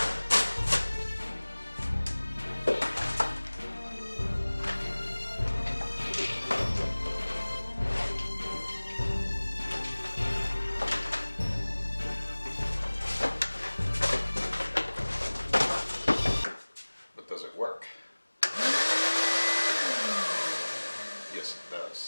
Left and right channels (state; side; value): inverted; both; correlation -1.00